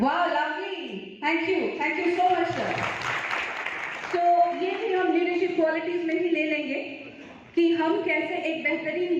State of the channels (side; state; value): both; identical; correlation 1.00